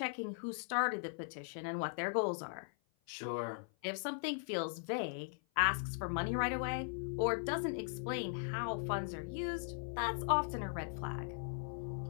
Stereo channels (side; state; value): right; silent; 52 dB below the other